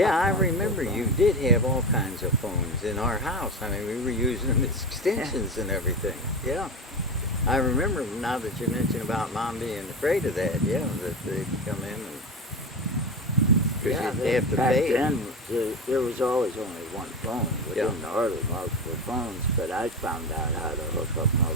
I on their remember you phone. did have all kinds of phones in our house. I mean, we were using them as extensions and everything. Yeah. I remember now that you mentioned about Mom being afraid of that, that they'd come in and... Because you'd have to back pay. then there was always only one phone. We Yeah. didn't order multiple phones, but I found out how to hook up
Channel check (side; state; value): both; normal; correlation 0.23